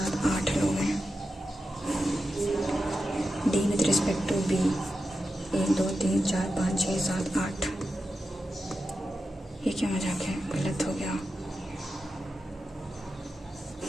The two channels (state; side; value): normal; both; correlation 0.90